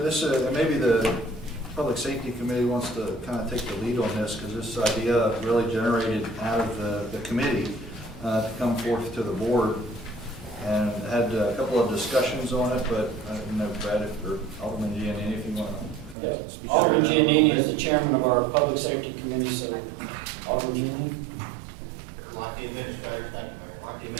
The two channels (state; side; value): drops out; left; at 16.2 s